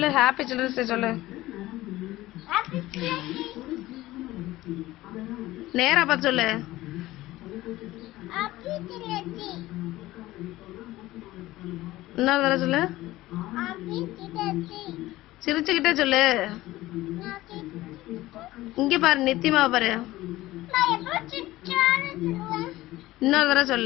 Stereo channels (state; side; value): quieter; right; 17.2 dB